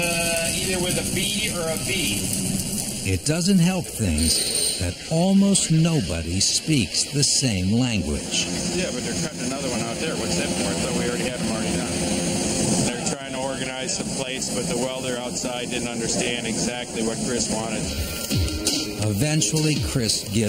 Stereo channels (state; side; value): identical; both; correlation 1.00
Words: with a B or a V. It doesn't help things that almost nobody speaks the same language. Yeah, but they're cutting another one out there. What's that for? I thought we already had them already done. They're trying to organize some plates, but the welder outside didn't understand exactly what Chris wanted. Eventually, Chris